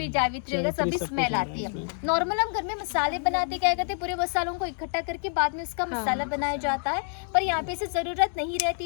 जावित्री वगैरह जावित्री सभी सब स्मेल कुछ आती है। है। नॉर्मल हम घर में मसाले बनाते क्या करते हैं, पूरे मसालों को इकट्ठा करके बाद में उसका मसाला बनाया जाता है, पर यहाँ पे इसे जरूरत नहीं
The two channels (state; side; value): silent; right; 55 dB below the other